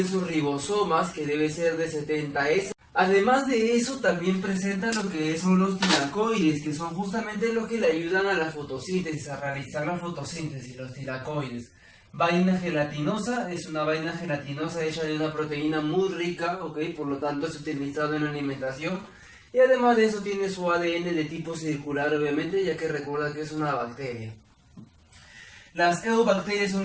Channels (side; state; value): both; identical; correlation 1.00